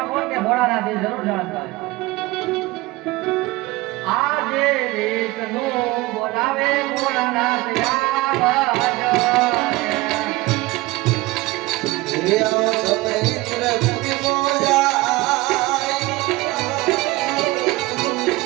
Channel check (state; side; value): quieter; left; 20.7 dB